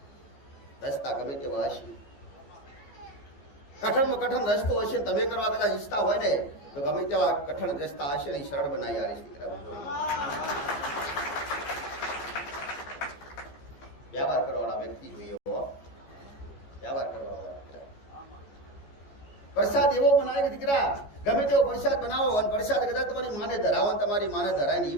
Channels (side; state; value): right; late; 14 ms